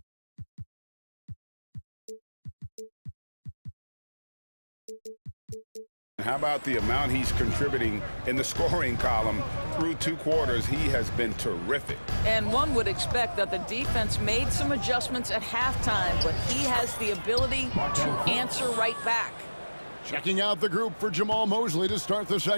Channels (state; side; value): inverted; both; correlation -1.00